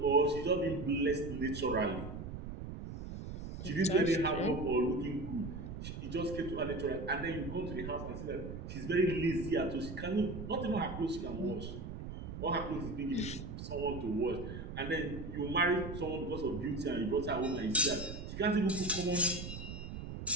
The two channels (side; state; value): right; noise; rumble, 8 dB below the sound